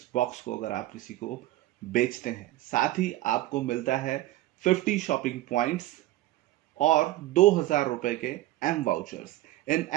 बॉक्स को अगर आप किसी को बेचते हैं। साथ ही आपको मिलता है 50 शॉपिंग पॉइंट्स और 2,000 रुपए के एम वाउचर्स। इन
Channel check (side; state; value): left; quieter; 16.2 dB